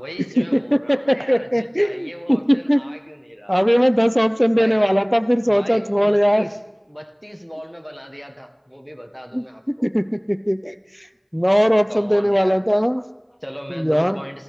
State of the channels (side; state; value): both; identical; correlation 1.00